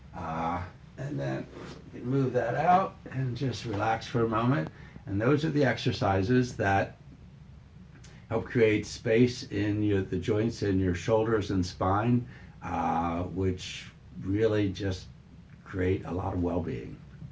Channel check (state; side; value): identical; both; correlation 1.00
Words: And then you can move that out and just relax for a moment. And those are the exercises that help create space in the joints in your shoulders and spine, which really just create a lot of well-being.